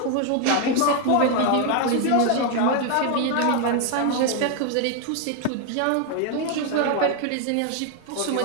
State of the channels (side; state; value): both; different; correlation 0.01